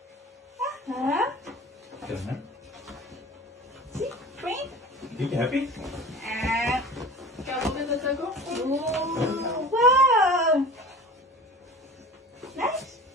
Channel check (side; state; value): both; normal; correlation 0.39